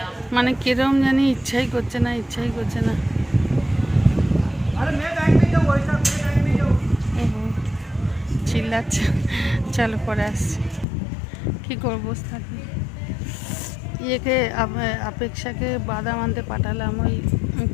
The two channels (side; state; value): right; drops out; at 10.9 s